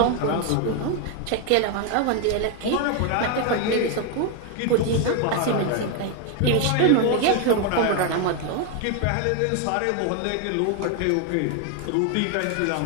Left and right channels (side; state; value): both; different; correlation 0.01